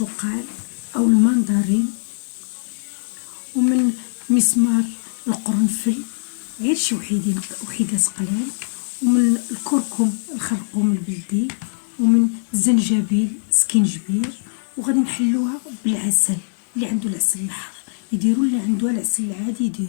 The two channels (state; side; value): silent; right; digital silence